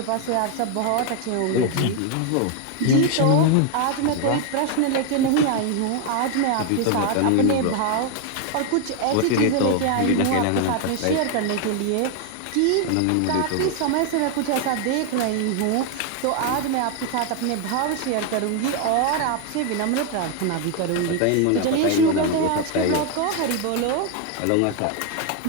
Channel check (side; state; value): both; different; correlation 0.01